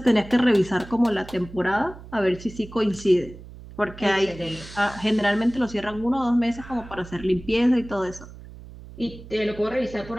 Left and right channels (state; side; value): noise; right; hum, 16 dB below the sound